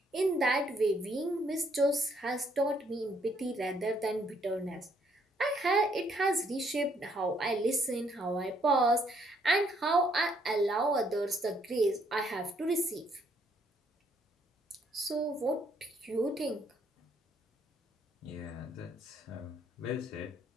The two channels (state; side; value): normal; both; correlation 0.69